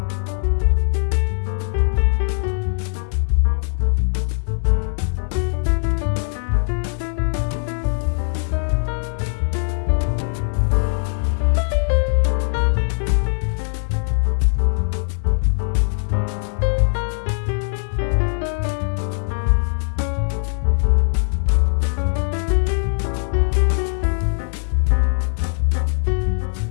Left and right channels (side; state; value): right; silent; digital silence